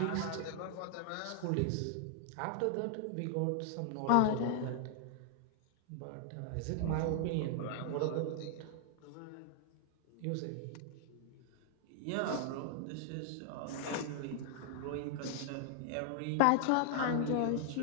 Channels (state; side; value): different; both; correlation 0.00